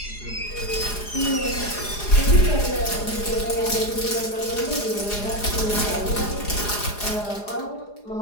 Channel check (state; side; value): late; right; 4.9 ms